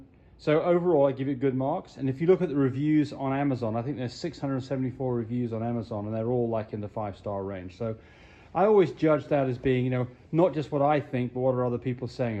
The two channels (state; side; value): identical; both; correlation 1.00